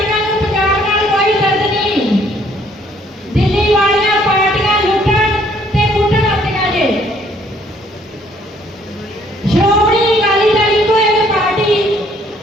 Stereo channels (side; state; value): both; normal; correlation 0.63